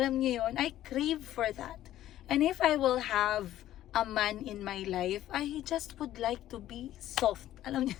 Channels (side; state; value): right; quieter; 13.2 dB